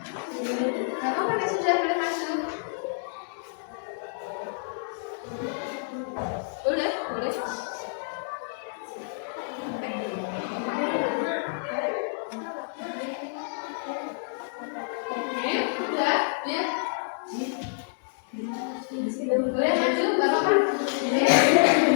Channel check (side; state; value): right; silent; digital silence